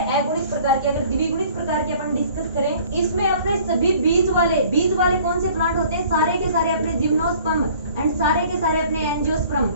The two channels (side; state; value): both; inverted; correlation -0.52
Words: अगुणित प्रकार के। अगर द्विगुणित प्रकार के अपन इसमें अपने सभी बीज वाले कौन से प्लांट होते हैं, सारे के सारे अपने जिम्नोस्पर्म एंड सारे के सारे अपने एंजियोस्पर्म।